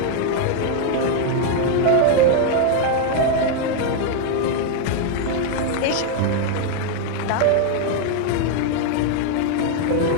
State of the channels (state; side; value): different; both; correlation 0.00